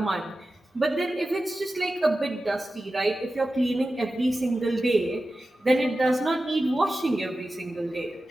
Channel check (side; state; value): both; normal; correlation 0.94